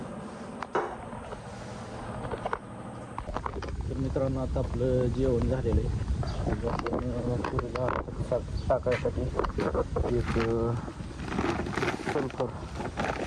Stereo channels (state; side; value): identical; both; correlation 1.00